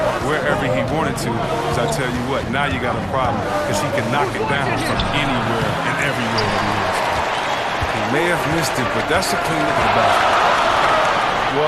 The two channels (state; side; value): identical; both; correlation 1.00